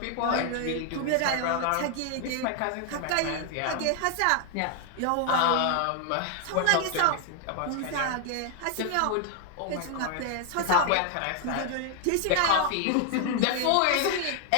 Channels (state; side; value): different; both; correlation 0.00